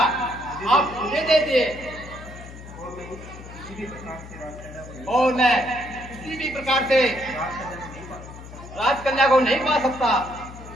आप मुझे दे दिए और मैं किसी भी प्रकार से राजकन्या को नहीं पा सकता।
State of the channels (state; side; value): noise; left; hum, 15 dB below the sound